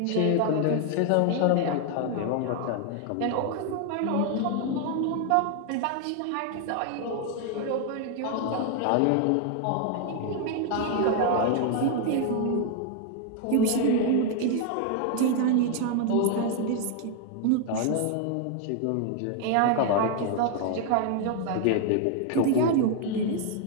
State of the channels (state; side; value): different; both; correlation 0.00